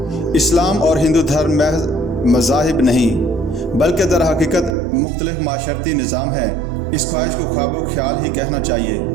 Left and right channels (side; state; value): left; drops out; at 4.8 s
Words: इस्लाम और हिंदू धर्म महज मज़ाहिब नहीं बल्कि दर हकीकत मुख्तलिफ माशरती निज़ाम है। इस ख्वाहिश को ख्वाबो ख्याल ही कहना चाहिए